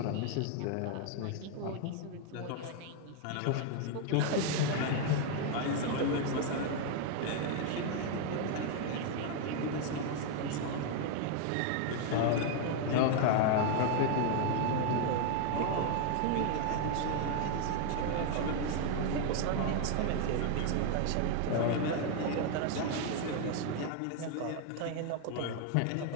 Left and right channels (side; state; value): both; different; correlation 0.00